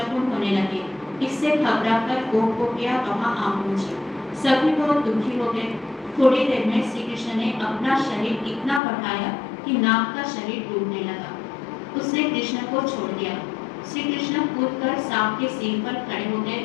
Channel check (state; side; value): drops out; right; at 8.8 s